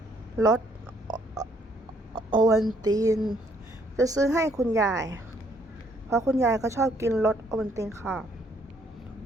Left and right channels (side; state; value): both; normal; correlation 0.67